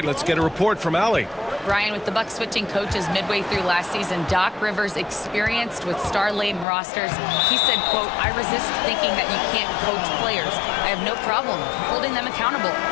let's get a report from Allie. Brian, with the Bucks switching coaches midway through last season, Doc Rivers, experienced with star-laden rosters, he said, quote, "I resist thinking that you can't coach players. I have no problem holding them accountable.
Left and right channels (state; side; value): drops out; right; at 6.7 s